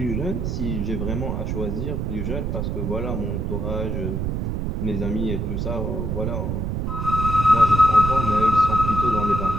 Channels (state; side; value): noise; right; rumble, 1 dB below the sound